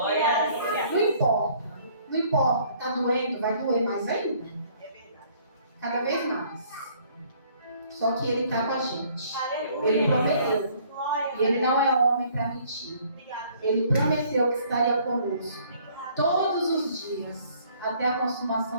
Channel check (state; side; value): inverted; both; correlation -0.59